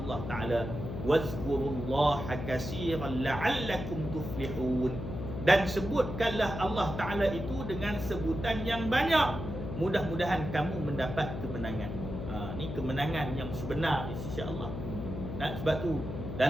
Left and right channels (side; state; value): left; noise; hum, 6 dB below the sound